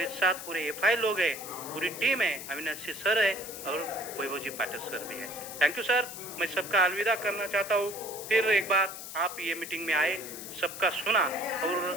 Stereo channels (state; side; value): noise; left; hiss, 10 dB below the sound